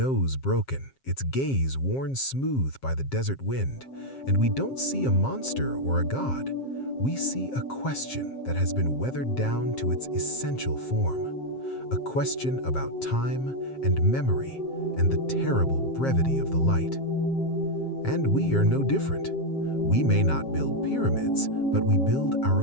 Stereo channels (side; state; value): right; late; 7.5 ms